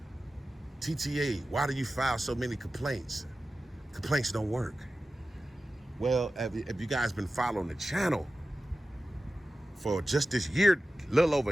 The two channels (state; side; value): normal; both; correlation 0.94